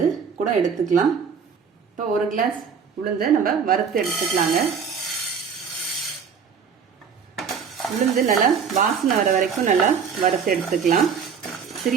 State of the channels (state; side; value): quieter; left; 6.5 dB